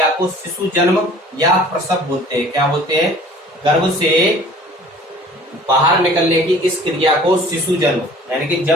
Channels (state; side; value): normal; both; correlation 0.49